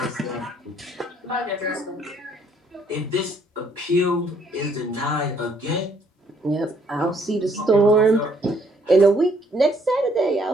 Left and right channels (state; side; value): normal; both; correlation 0.66